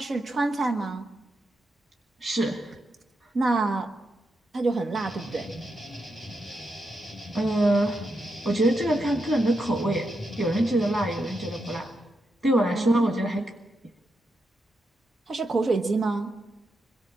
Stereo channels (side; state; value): both; normal; correlation 0.85